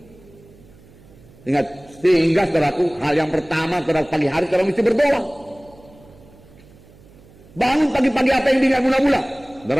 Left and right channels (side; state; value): right; noise; hum, 25 dB below the sound